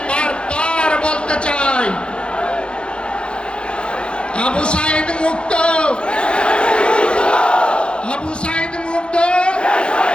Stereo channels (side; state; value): right; late; 0.055 ms